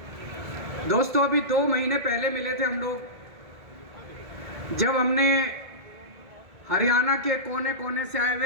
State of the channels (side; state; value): left; late; 1.8 ms